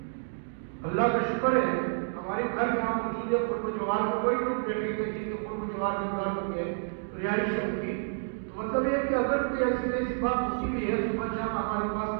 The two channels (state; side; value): silent; left; digital silence